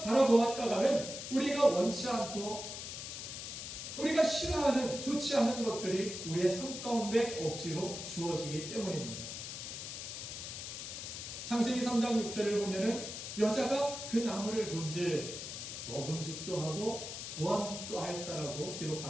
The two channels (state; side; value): noise; left; hiss, 7 dB below the sound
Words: 바라보았다가는 우리가 원치 않고 우리가 싫어하는, 좋지 않은 것들이 우리의 삶 가운데 억지로 주어지기 때문입니다. 창세기 3장 6절을 보면은 여자가 그 나무를 본즉 먹음직도 하고 보암직도 하였다라고